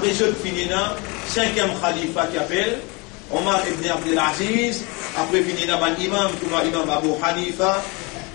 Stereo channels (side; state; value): right; quieter; 28.4 dB